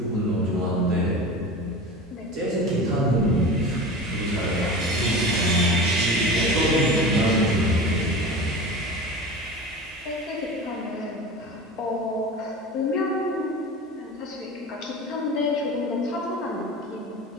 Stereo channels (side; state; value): both; normal; correlation 0.32